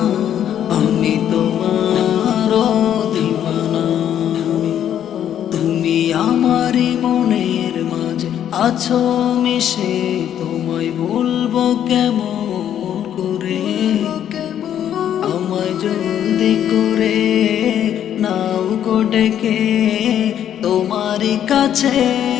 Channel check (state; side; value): quieter; right; 10.1 dB